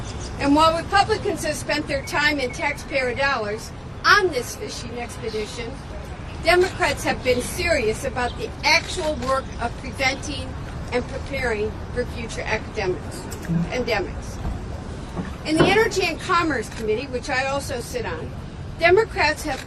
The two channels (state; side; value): identical; both; correlation 1.00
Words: And while Republicans have spent their time and taxpayer dollars on this fishing expedition, Democrats have been serious about the actual work of preventing and preparing for future pandemics. In the Energy and Commerce Committee, which I also sit on, Democrats have